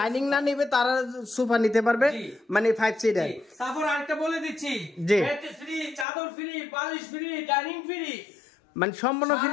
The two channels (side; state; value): right; drops out; at 6.1 s